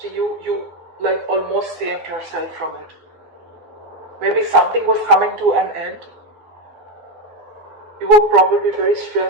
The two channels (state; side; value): late; left; 12 ms